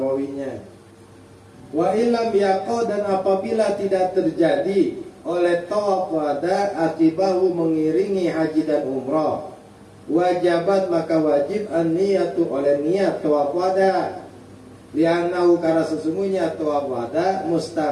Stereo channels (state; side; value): identical; both; correlation 1.00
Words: Wa ilam yaqo, dan apabila tidak terjadi oleh tawaf wada akibahu mengiringi haji dan umrah, wajabat, maka wajib an-niyatu, oleh niat tawaf wada. Li'annahu, karena sesungguhnya tawaf wada